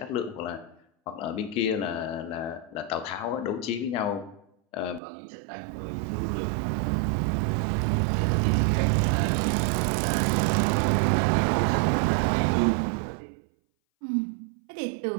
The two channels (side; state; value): left; drops out; at 5.0 s